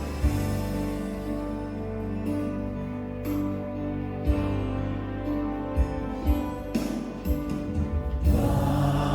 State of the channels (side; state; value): both; identical; correlation 1.00